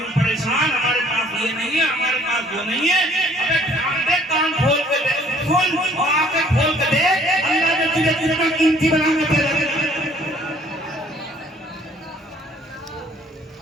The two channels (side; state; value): both; normal; correlation 0.58